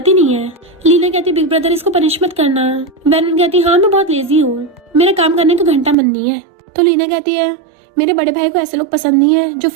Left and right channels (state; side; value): drops out; left; at 6.0 s